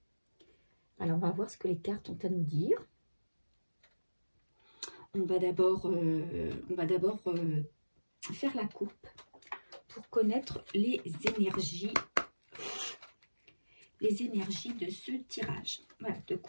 Alors, on va voir ce que les cartes ont à nous dire. On va d'abord faire la coupe pour connaître les énergies de ce tirage. Voilà, de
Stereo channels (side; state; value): both; inverted; correlation -1.00